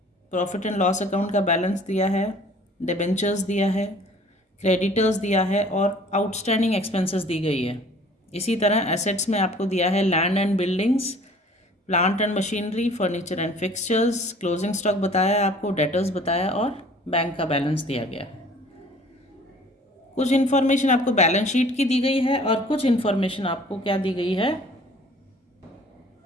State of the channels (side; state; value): both; normal; correlation 0.52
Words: profit and loss account का बैलेंस दिया है, डिबेंचर्स दिया है, क्रेडिटर्स दिया है और आउटस्टैंडिंग एक्सपेंसेस दी गई है। इसी तरह एसेट्स में आपको दिया है land and buildings, plant and machinery, furniture and fixtures, closing stock बताया आपको, डेटर्स बताया और बैंक का बैलेंस दिया गया है। कुछ इन्फॉर्मेशन आपको बैलेंस शीट की दी गई है और कुछ इन्फॉर्मेशन आपको क्या दी गई है?